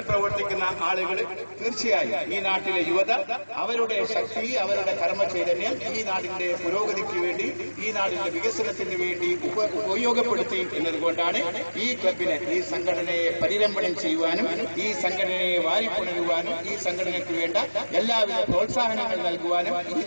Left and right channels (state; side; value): inverted; both; correlation -1.00